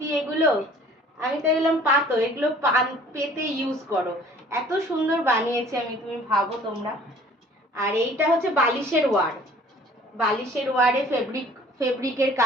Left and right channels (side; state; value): both; normal; correlation 0.52